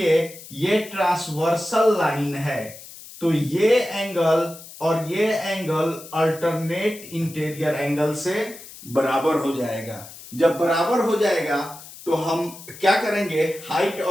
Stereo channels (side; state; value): left; noise; hiss, 17 dB below the sound